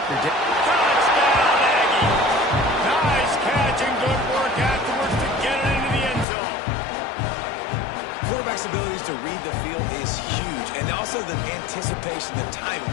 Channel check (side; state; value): right; drops out; at 6.2 s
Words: Touchdown, Aggie! Nice catch and good work afterwards to get it into the end zone. Quarterback's abilities to read the field is huge, and also the anticipation, the timing.